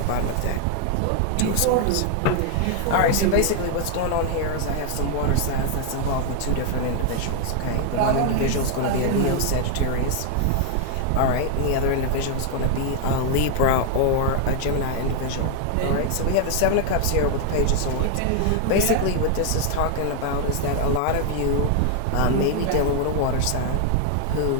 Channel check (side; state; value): both; different; correlation 0.00